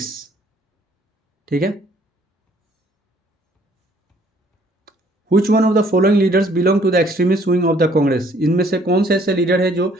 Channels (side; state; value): both; normal; correlation 0.61